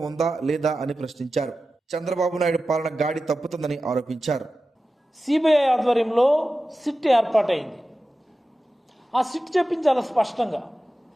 ఉందా లేదా అని ప్రశ్నించారు. చంద్రబాబు నాయుడు పాలన గాడి తప్పుతుందని ఆరోపించారు. సిబిఐ ఆధ్వర్యంలో సిట్ ఏర్పాటైంది. ఆ సిట్ చెప్పించాలి స్పష్టంగా.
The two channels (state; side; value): normal; both; correlation 0.94